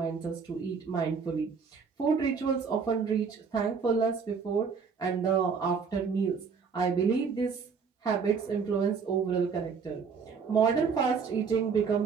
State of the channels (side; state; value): left; quieter; 5.7 dB